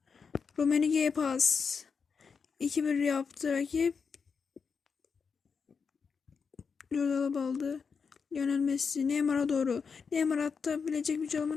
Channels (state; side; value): quieter; right; 5.7 dB